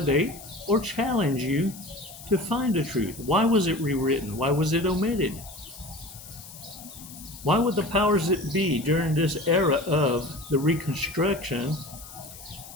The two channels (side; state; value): left; noise; hiss, 16 dB below the sound